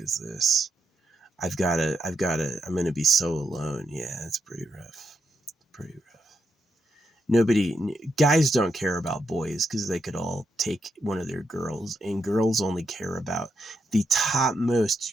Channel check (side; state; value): both; normal; correlation 0.82